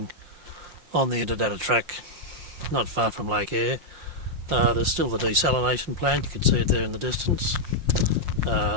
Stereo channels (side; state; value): left; late; 5.7 ms